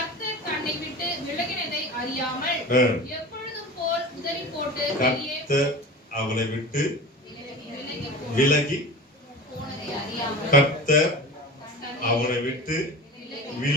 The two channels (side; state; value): both; normal; correlation 0.33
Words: தன்னை விட்டு விலகினதை அறியாமல் எப்பொழுதும் போல் உதறி போட்டு கர்த்தர் அவளை விட்டு விலகி போனதை அறியாமல் கர்த்தர் அவனை விட்டு